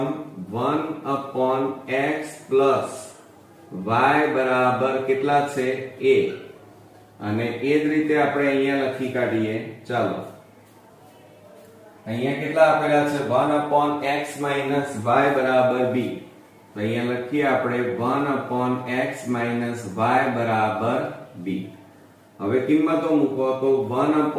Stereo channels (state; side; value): identical; both; correlation 1.00